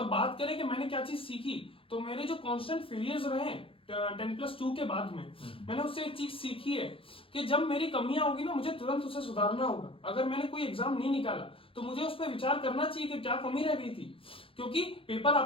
बात करें कि मैंने क्या चीज सीखी, तो मेरे जो कांस्टेंट फेलियर्स रहे 10+2 के बाद में, मैंने उससे एक चीज सीखी है कि जब मेरी कमियां होगी ना, मुझे तुरंत उसे सुधारना होगा। अगर मैंने कोई एग्जाम नहीं निकाला तो मुझे उस पर विचार करना चाहिए कि क्या कमी रह गई थी, क्योंकि पेपर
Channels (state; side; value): late; right; 0.26 ms